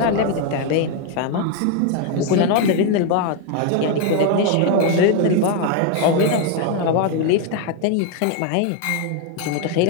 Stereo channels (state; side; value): different; both; correlation 0.01